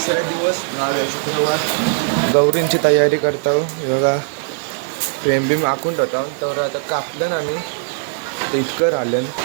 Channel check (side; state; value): left; silent; digital silence